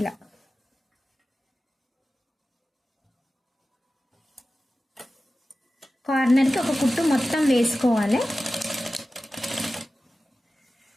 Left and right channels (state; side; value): normal; both; correlation 0.95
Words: కార్నర్కి ఒక కుట్టు మొత్తం వేసుకోవాలి.